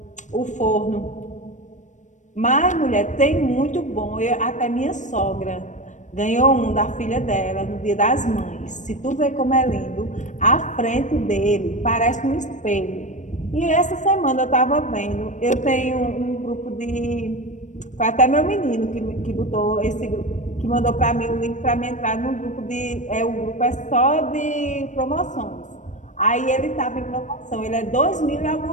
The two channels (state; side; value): late; right; 0.35 ms